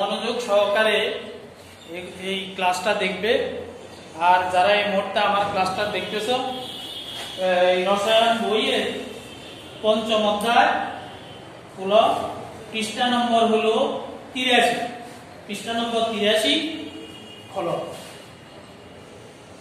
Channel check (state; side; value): identical; both; correlation 1.00